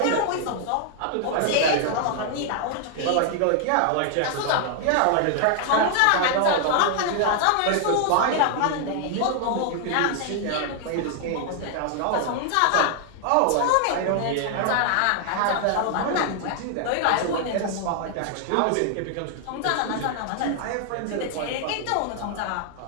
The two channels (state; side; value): different; both; correlation 0.00